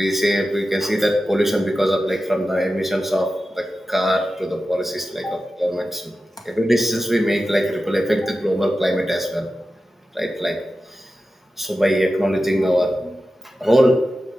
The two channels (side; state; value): both; normal; correlation 0.93